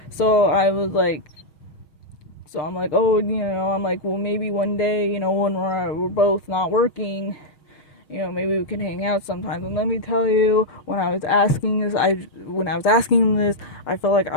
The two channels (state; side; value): late; right; 6.2 ms